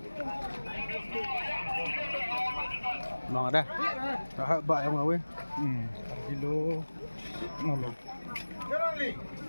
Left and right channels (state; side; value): inverted; both; correlation -1.00